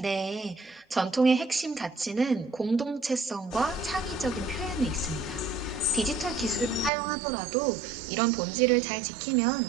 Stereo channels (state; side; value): drops out; left; at 6.9 s